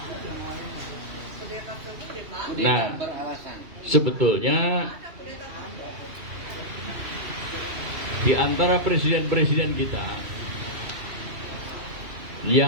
Nah, sebetulnya di antara presiden-presiden kita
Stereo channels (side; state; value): left; late; 2.8 ms